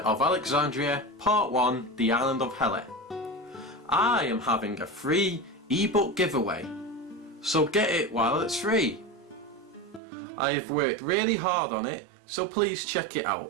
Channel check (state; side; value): drops out; left; at 10.0 s